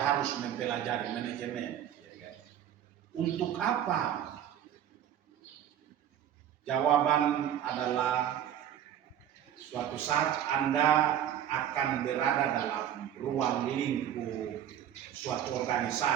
mempelajari manajemen? Untuk apa? Jawaban adalah suatu saat Anda akan berada dalam ruang lingkup suatu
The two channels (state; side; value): quieter; left; 10.5 dB